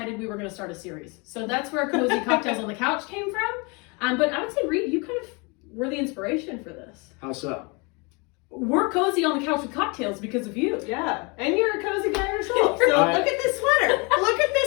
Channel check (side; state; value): right; quieter; 30.0 dB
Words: we were going to start a series. So that's where Cozy Cocktails on the Couch came from. But I would say, Reed, you kind of were the inspiration for this. How so? We're cozy on the couch with cocktails because of you. Yeah, and you're a cozy guy yourself. So look at this sweater. Look at